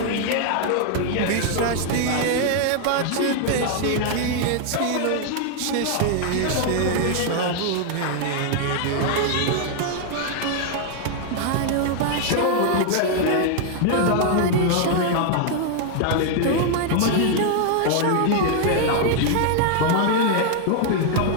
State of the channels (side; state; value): both; different; correlation 0.00